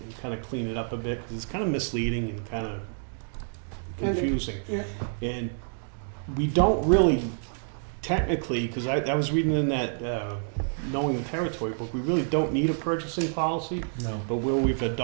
and kind of clean it up a bit, because it's kind of misleading and kind of confusing. Yeah. And we don't really, technically, because I was reading in that Knowing the Territory book, we really don't need a purchasing policy, No. but where we've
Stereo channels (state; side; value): silent; left; digital silence